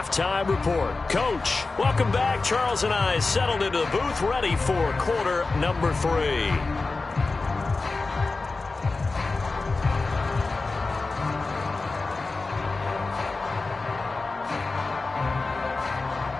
Report. Coach, welcome back. Charles and I settled into the booth, ready for quarter number 3.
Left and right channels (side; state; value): right; quieter; 3.7 dB